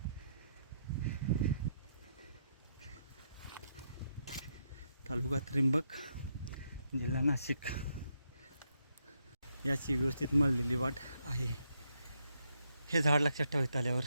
तालुका त्र्यंबक, जिल्हा नाशिक याची व्यवस्थित मळलेली वाट आहे. हे झाड लक्षात ठेवायचं आल्यावर.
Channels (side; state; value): both; inverted; correlation -0.79